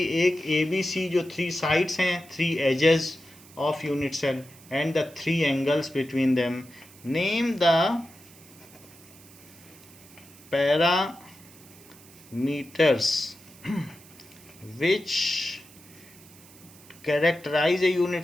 एक ABC जो 3 साइड्स हैं, 3 edges of unit cell and the 3 angles between them. Name the parameters which characterize a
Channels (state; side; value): noise; right; hiss, 22 dB below the sound